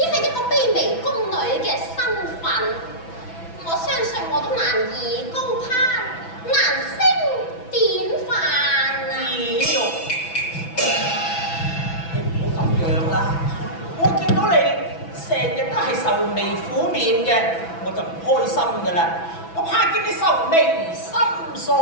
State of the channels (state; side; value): late; right; 6.0 ms